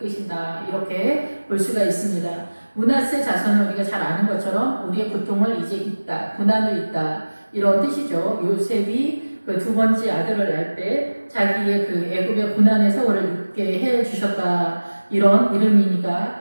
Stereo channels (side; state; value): both; inverted; correlation -1.00